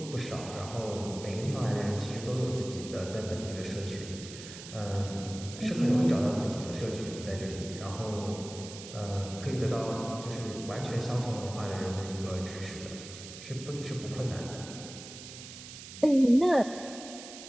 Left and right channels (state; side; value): noise; right; hiss, 13 dB below the sound